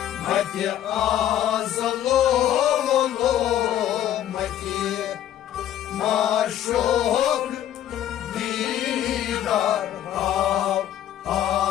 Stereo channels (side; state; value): right; quieter; 11.5 dB